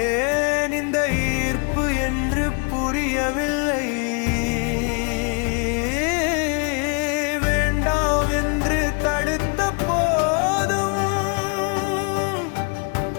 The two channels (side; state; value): right; quieter; 35.2 dB